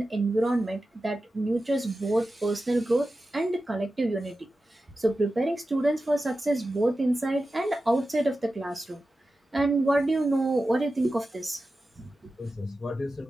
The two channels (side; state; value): both; normal; correlation 0.93